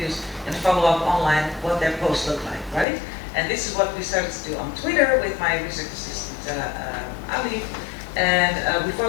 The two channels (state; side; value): drops out; right; at 2.9 s